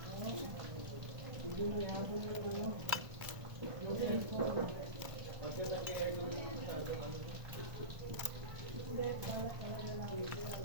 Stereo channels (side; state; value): left; late; 1.4 ms